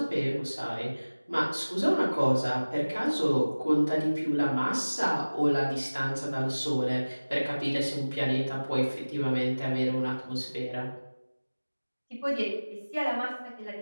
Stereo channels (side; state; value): both; inverted; correlation -1.00